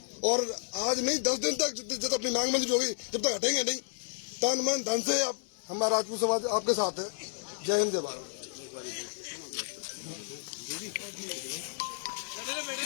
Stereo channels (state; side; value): silent; right; 57 dB below the other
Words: और आज नहीं 10 दिन तक जब अपनी मांग मंजूर होगी तब तक हटेंगे नहीं। तन मन धन से हमारा राजपूत समाज आपके साथ है। जय हिंद, जय भारत।